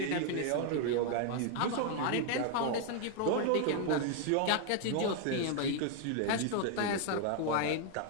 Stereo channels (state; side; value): different; both; correlation 0.00